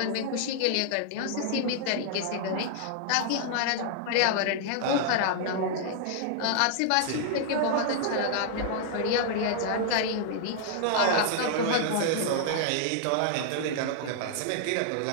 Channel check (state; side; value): different; both; correlation -0.01